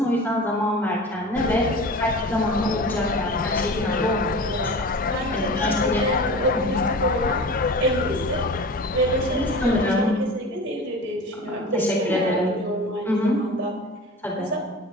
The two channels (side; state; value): both; normal; correlation 0.35